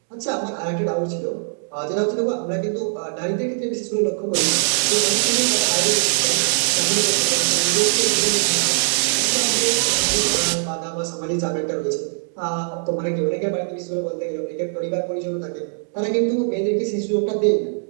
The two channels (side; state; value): left; silent; digital silence